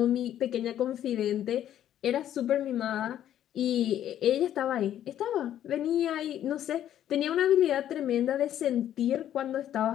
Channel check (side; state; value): right; quieter; 11.2 dB